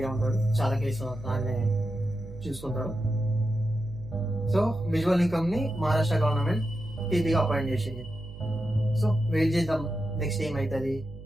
ఉంటాడు, చాలా కేసులు ఆయన చూసుకుంటాడు. సో విజువల్ నికమ్ ని మహారాష్ట్ర గవర్నమెంట్ పీపీగా అపాయింట్ చేసింది. సో వెయిట్ చేద్దాం నెక్స్ట్ ఏమవుతుంది.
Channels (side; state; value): right; noise; hum, 14 dB below the sound